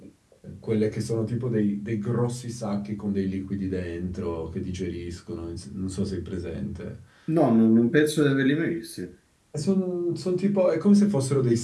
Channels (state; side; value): identical; both; correlation 1.00